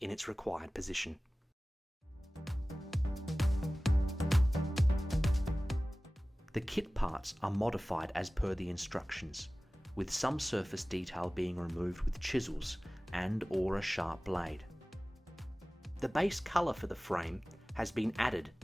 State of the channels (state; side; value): normal; both; correlation 0.98